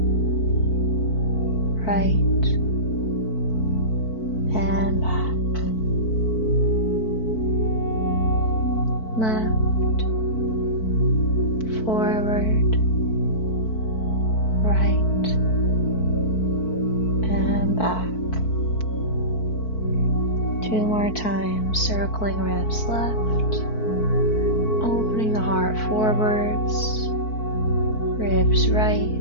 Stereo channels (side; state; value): right; late; 4.5 ms